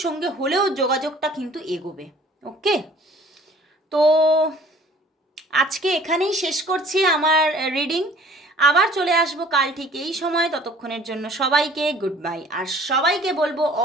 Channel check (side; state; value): both; normal; correlation 0.52